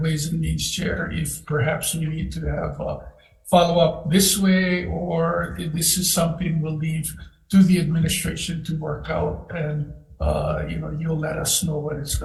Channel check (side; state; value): both; identical; correlation 1.00